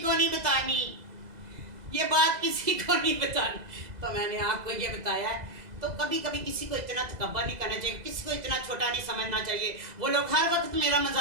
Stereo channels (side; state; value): left; late; 2.0 ms